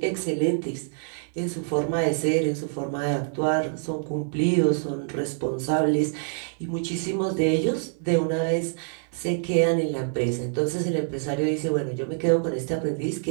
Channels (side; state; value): left; silent; 61 dB below the other